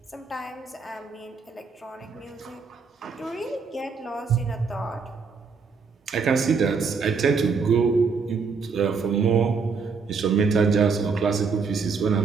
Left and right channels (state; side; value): quieter; left; 5.1 dB